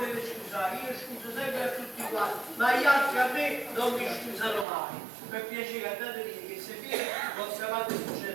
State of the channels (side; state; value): left; drops out; at 4.7 s